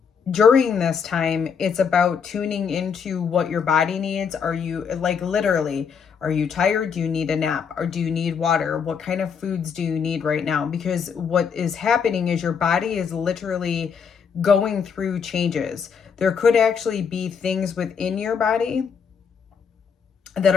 during this time, it's about tuning into what your body needs. Are you, like, literally, are you tired? Do you need a nap? Or do you need water? What kind of foods do you need right now? Because what is happening is your body is literally going through changes. There could actually be things within your body that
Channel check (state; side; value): quieter; right; 6.6 dB